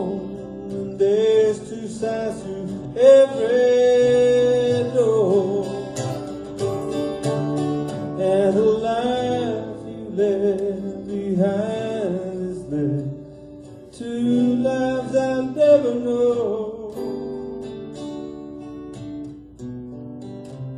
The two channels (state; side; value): identical; both; correlation 1.00